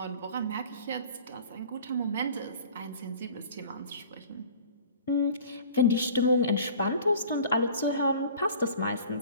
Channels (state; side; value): inverted; both; correlation -0.45